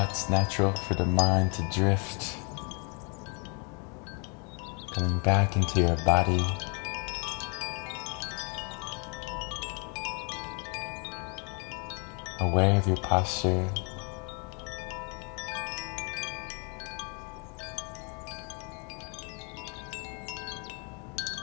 natural for the mind to drift. Coming back into your body. Aware of your posture.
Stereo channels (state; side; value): quieter; right; 35.8 dB